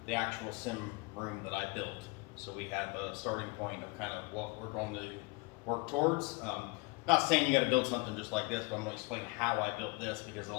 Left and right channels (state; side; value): quieter; right; 27.8 dB